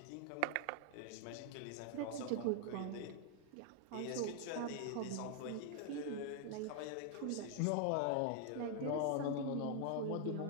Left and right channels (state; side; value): different; both; correlation 0.00